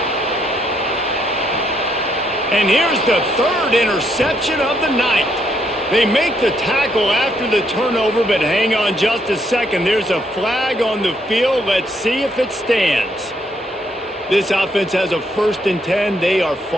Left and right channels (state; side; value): normal; both; correlation 0.73